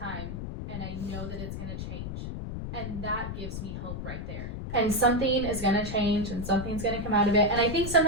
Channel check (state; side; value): noise; left; rumble, 6 dB below the sound